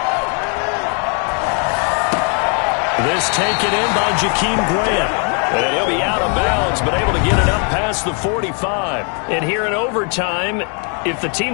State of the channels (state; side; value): quieter; right; 39.8 dB